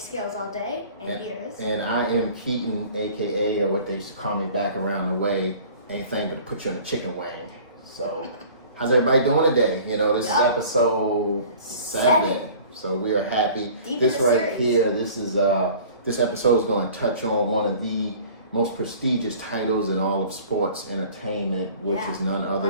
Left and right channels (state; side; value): inverted; both; correlation -0.47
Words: All Day, and here's. And I am Keaton, aka, or what they used to call me back around the way, anything but to put you on a chicken wing. So, how's everybody doing today? You know, this is episode 7. So we are happy. Deep This in the right series. here, this episode is going to touch on one of the most prestigious titles in all of sports entertainment, which is none other